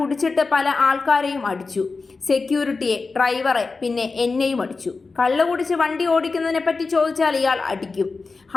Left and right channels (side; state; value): right; quieter; 4.1 dB